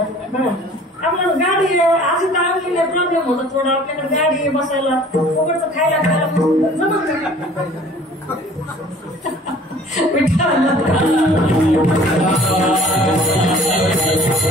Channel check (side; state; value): both; normal; correlation 0.50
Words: आपल्याला गाडी अशी टाळलेली प्रॉब्लेम होता थोडा. आपल्याकडे गाडी बसायला उघडचं खायला जमत